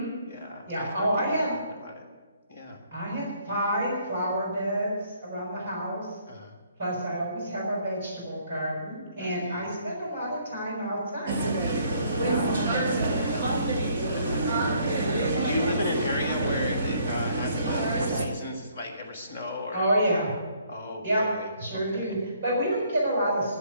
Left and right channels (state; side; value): inverted; both; correlation -0.64